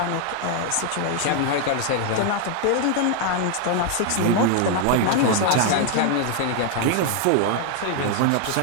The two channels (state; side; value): different; both; correlation 0.00